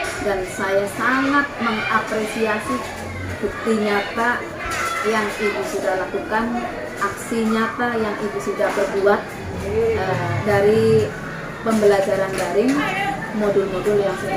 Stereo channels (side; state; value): both; identical; correlation 1.00